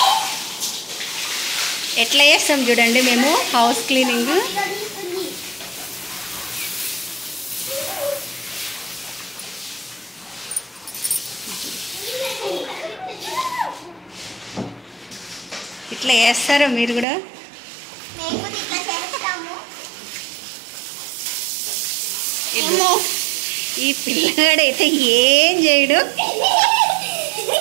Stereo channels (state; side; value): drops out; left; at 17.1 s